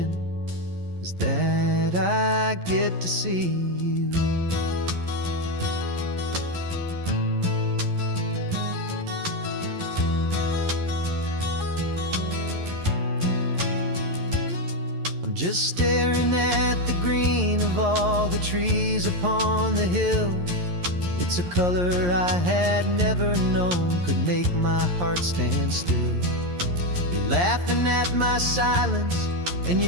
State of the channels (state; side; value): late; left; 11 ms